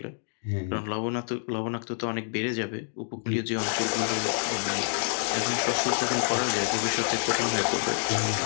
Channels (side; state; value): right; silent; digital silence